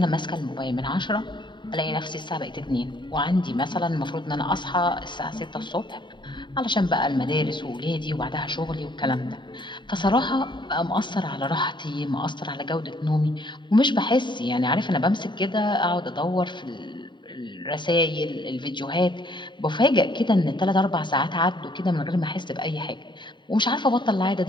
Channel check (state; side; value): late; right; 0.23 ms